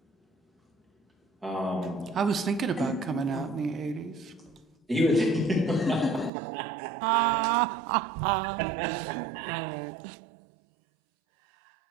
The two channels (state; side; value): drops out; left; at 6.3 s